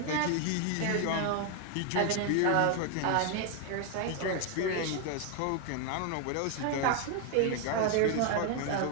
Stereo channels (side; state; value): both; different; correlation 0.01